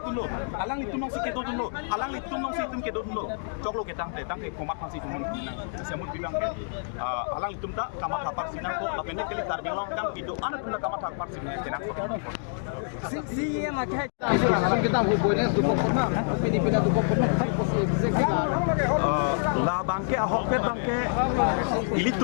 tum lo alang li tum si ke do tum lo alang li tum si tum ke do tum lo choklo ke tang te komat pang si tum nang sasemut bidang ke alang li tum ta kamat kapar sinang ko lapende kali kar biang long kang pido anak tum ta kamat kapar sinang ke nang ko si em ak hai kita ho boy ne tu ko Filipina tu ko la bangke ahok pet bangke ilit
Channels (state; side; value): silent; right; digital silence